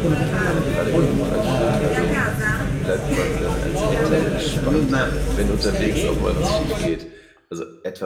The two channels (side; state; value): both; identical; correlation 1.00